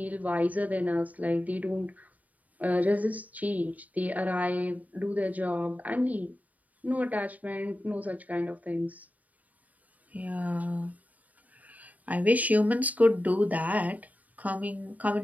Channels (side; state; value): left; late; 0.075 ms